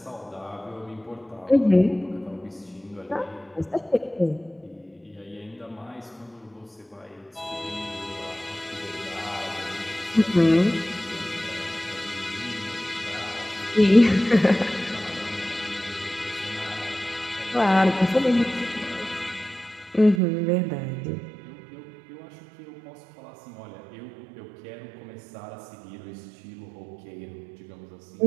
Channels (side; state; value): left; drops out; at 20.2 s